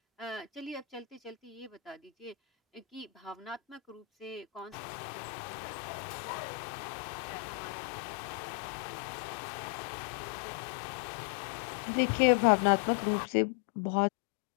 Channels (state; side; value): drops out; right; at 4.8 s